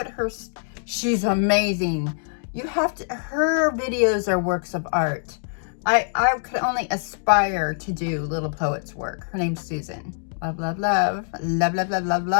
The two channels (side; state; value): right; silent; digital silence